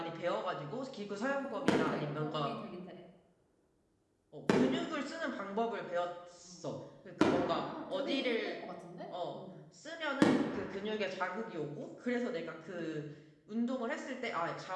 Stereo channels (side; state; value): both; identical; correlation 1.00